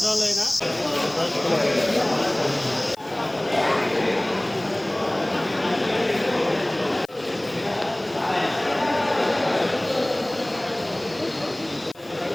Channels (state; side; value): noise; left; hiss, 29 dB below the sound